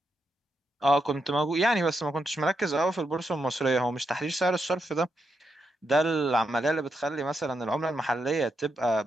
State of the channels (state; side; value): normal; both; correlation 0.83